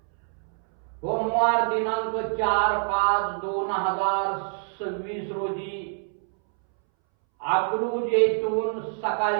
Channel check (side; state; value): left; silent; 61 dB below the other